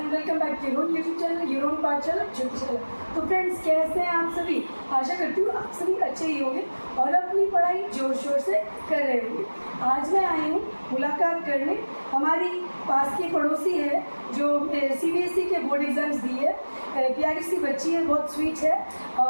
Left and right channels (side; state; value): both; inverted; correlation -1.00